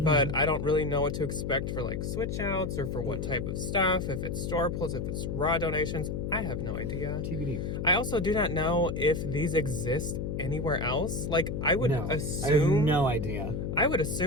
I don't really know what to expect for like switch outs or for what type of stuff, if it's store pulls, if it's raw donations. I have no idea. TBD. I also do not know if these exist anywhere else. Like, I would assume... I have no idea. I would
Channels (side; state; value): left; noise; hum, 3 dB below the sound